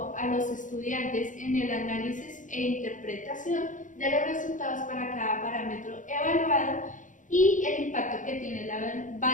a los estudiantes en el análisis e interpretación de los resultados para cada parámetro evaluado y el impacto que tiene la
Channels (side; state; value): right; late; 0.37 ms